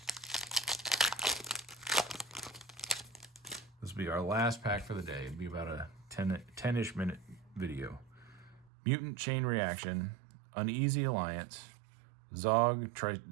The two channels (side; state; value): left; drops out; at 8.7 s